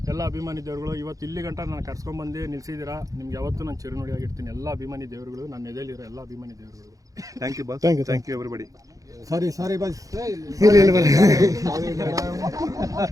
ಎಲ್ಲ ಅಭಿಮಾನಿ ದೇವರುಗಳು ಇವತ್ತು ಇಲ್ಲಿ ಗಂಟ ನಾನು ಕರ್ಸ್ಕೊಂಡ್ಬಂದು ನಿಲ್ಸಿದ್ದೀರಾ. ನಿಮ್ಗೆ ಯಾವತ್ತೂ ನಾನು ಚಿರುನುಡಿಯಾಗಿರ್ತೀನಿ. ಎಲ್ಲ ಅಭಿಮಾನಿ ದೇವರುಗಳು, ನನ್ನ ಎದೆಯಲ್ಲಿರೋ ಎಲ್ಲ ಅಭಿಮಾನಿ ದೇವರುಗಳು. Thank you boss. Thank you everybody. Sorry boss.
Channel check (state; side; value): late; left; 0.17 ms